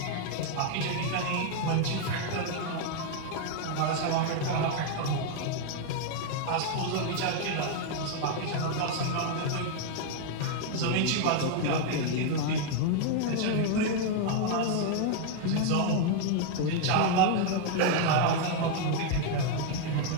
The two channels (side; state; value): both; different; correlation 0.00